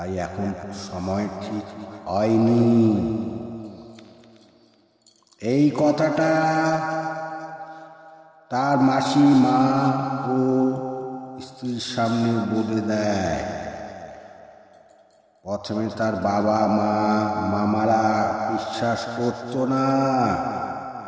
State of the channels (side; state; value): both; identical; correlation 1.00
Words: এখন সময় ঠিক হয়নি। এই কথাটা তার মাসি, মা ও স্ত্রীর সামনে বলে দেয়। প্রথমে তার বাবা মা মামারা বিশ্বাস করত না।